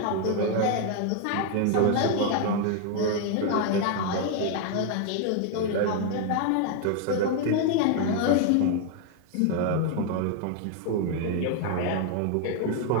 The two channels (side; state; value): both; different; correlation 0.01